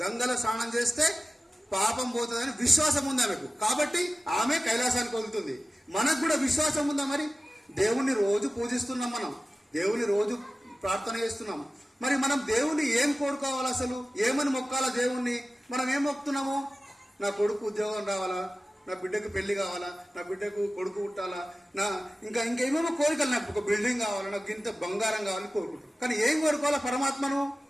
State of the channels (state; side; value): normal; both; correlation 0.95